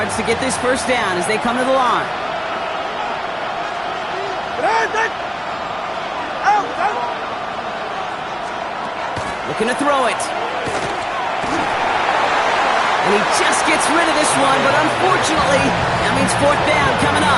to get this first down as they come to the line. Looking to throw it. And he just gets rid of this one, but unfortunately, that means fourth down coming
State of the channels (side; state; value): both; identical; correlation 1.00